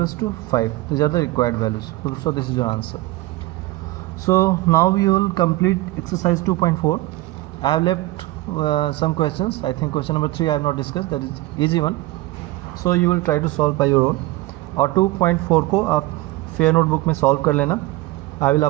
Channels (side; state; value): left; quieter; 18.4 dB